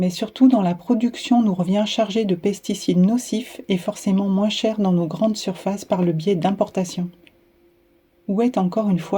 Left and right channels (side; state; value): both; identical; correlation 1.00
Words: surtout dans la production nous revient chargé de pesticides nocifs et forcément moins chers dans nos grandes surfaces par le biais d'importations. Où est encore une